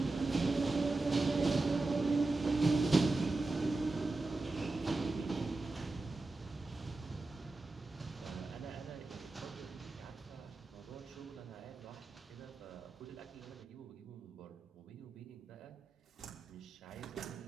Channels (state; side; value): quieter; left; 3.3 dB